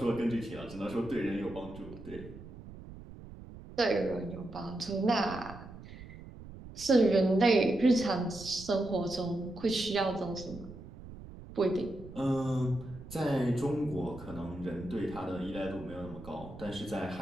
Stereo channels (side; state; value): right; noise; rumble, 15 dB below the sound